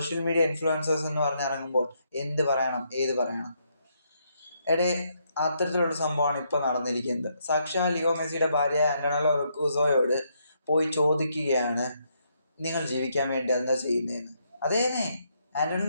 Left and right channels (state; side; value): inverted; both; correlation -0.76